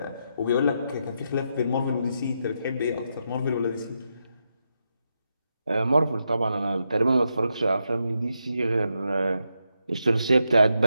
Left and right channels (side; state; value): both; inverted; correlation -0.84